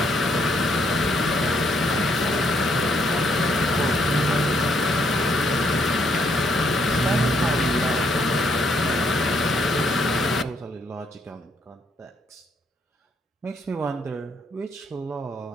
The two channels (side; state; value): both; normal; correlation 0.72